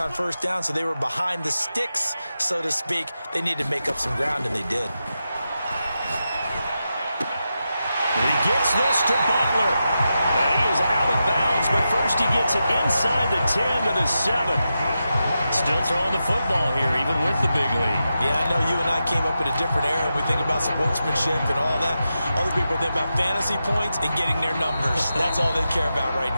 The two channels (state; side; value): inverted; both; correlation -0.89